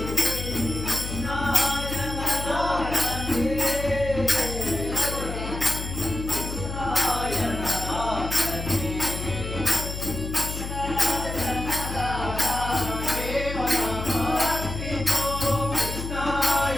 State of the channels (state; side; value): noise; left; hum, 6 dB below the sound